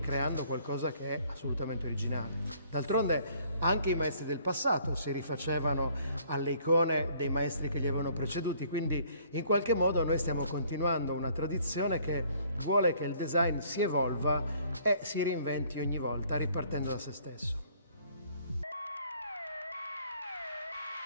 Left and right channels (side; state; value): both; inverted; correlation -0.60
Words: qualcosa che è assolutamente originale. D'altronde anche i maestri del passato si rifacevano alle icone dei maestri che li avevano preceduti, quindi in qualche modo noi stiamo continuando una tradizione che vuole che il design si evolva e si reinventi ogni volta ripartendo da se stesso.